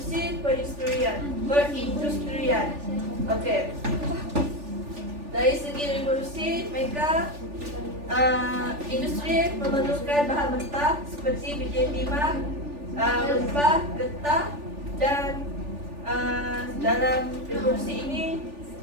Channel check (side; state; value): left; late; 3.4 ms